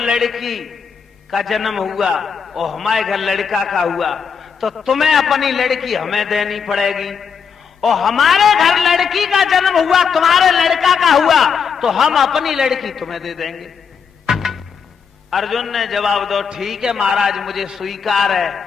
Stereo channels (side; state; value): right; quieter; 6.5 dB